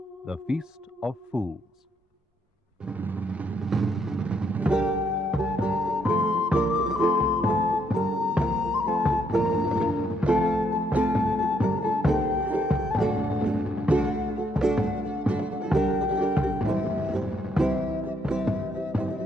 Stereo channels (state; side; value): normal; both; correlation 0.73